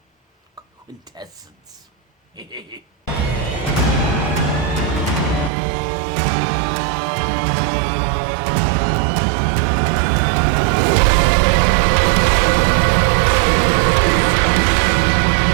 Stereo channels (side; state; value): left; drops out; at 5.5 s